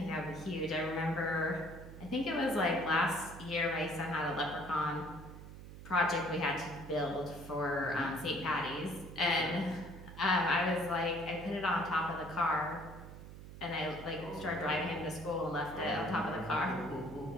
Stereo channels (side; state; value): right; noise; hum, 14 dB below the sound